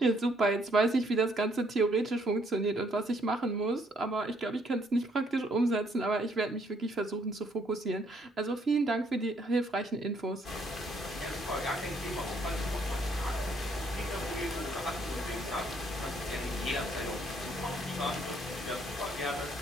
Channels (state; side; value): normal; both; correlation 0.68